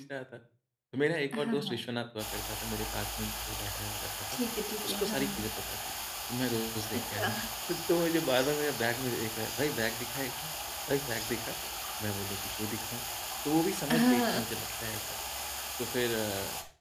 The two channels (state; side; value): identical; both; correlation 1.00